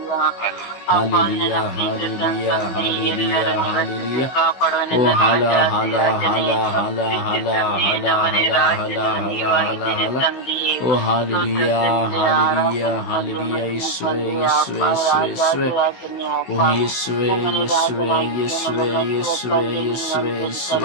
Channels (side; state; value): right; late; 16 ms